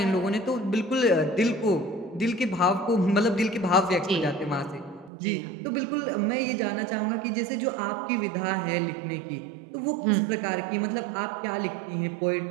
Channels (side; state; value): left; drops out; at 5.1 s